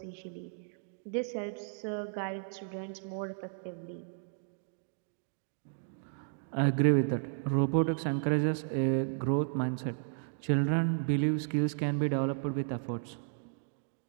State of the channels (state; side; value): silent; left; digital silence